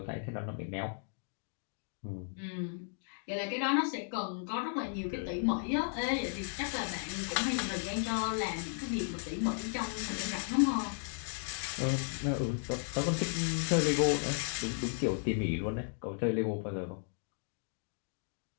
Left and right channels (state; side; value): silent; right; 54 dB below the other